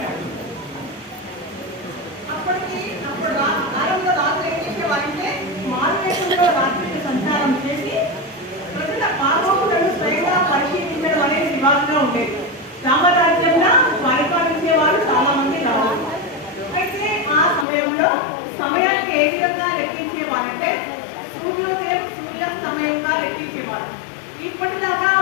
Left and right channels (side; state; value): right; drops out; at 17.7 s